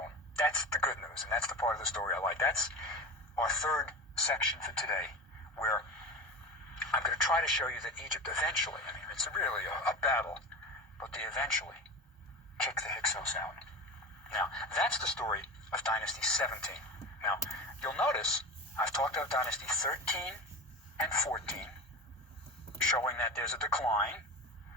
That's the good news, and that's the part of the story I like. That's our third section for today, where I'm going to try to show you that Egypt eventually, I mean, it's really a battle, but they eventually kick the Hyksos out. Now, that's the story of Dynasty 17. Now, you'll notice I've talked about Dynasty 13 and 14, showing that there's a decline.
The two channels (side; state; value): both; normal; correlation 0.28